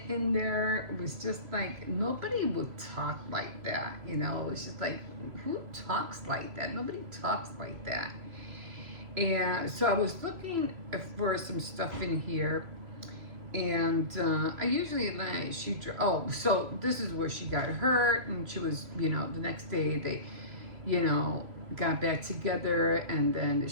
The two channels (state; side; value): late; left; 3.0 ms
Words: in there was just like, nobody would talk like that, It was just like, who talks like that? Nobody talks like that. And so I was looking for some stuff in here. And I usually so this is where she got hurt, and she was, the next day they, got back together, and then